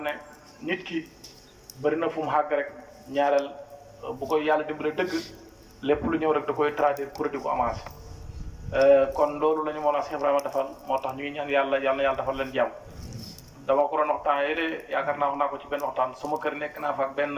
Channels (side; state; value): both; identical; correlation 1.00